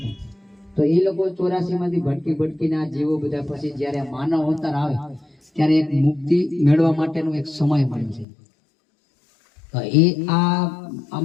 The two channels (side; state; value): right; drops out; at 8.2 s